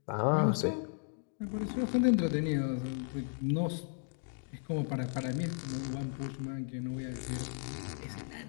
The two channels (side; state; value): right; silent; 54 dB below the other